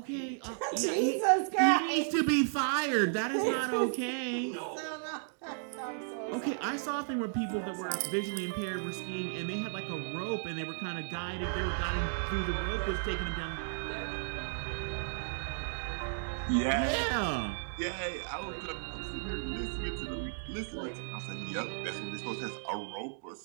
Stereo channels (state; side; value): silent; left; digital silence